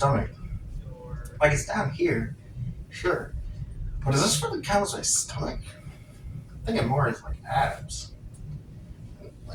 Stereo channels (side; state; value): both; identical; correlation 1.00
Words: Like it's down here, sure, but does this really count as my stomach? I think it more is like abs,